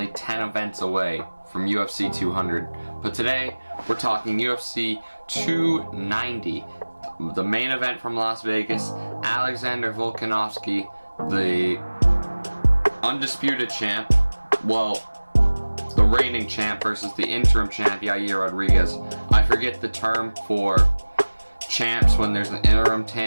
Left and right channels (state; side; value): inverted; both; correlation -1.00